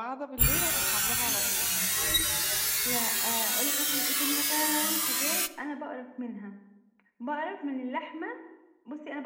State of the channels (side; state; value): both; identical; correlation 1.00